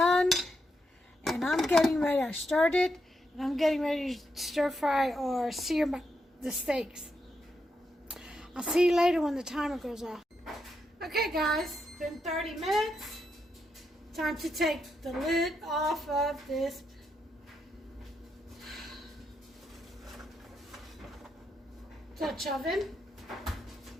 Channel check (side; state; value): both; normal; correlation 0.82